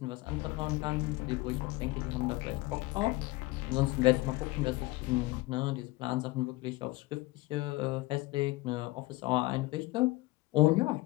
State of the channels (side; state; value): right; quieter; 20.8 dB